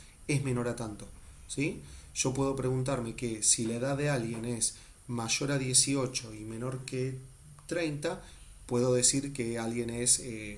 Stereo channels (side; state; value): both; identical; correlation 1.00